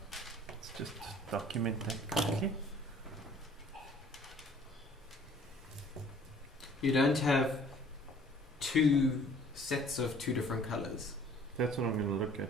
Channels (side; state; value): both; normal; correlation 0.53